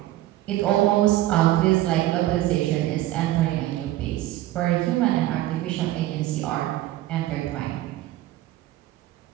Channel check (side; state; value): left; quieter; 15.3 dB